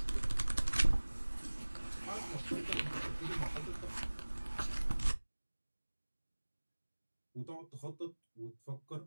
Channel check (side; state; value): both; inverted; correlation -1.00